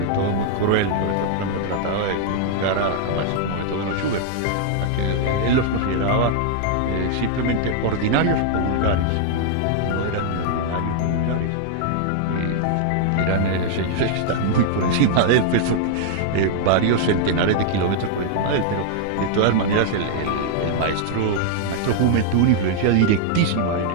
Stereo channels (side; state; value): both; different; correlation -0.01